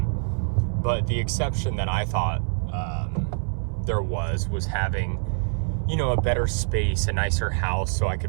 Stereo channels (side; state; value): left; silent; 62 dB below the other